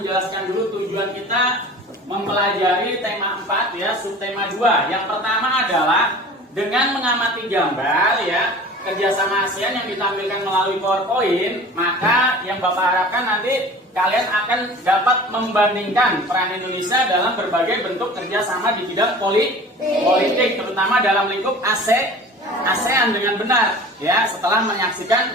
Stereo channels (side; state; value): both; normal; correlation 0.41